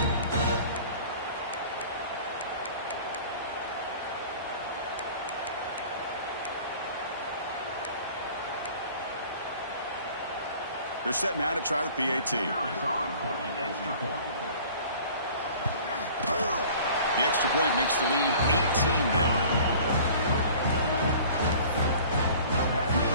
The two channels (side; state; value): both; inverted; correlation -0.47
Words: They're set now to try the PAT. The extra point makes the lead 18 now.